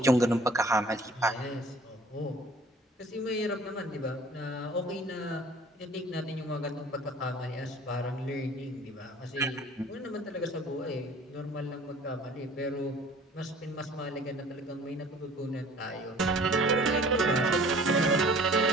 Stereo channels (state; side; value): normal; both; correlation 0.50